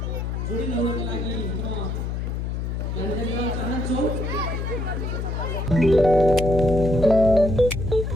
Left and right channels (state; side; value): noise; left; hum, 3 dB below the sound